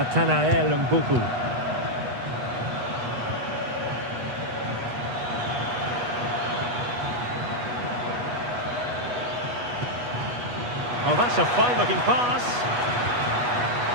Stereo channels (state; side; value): late; left; 8.2 ms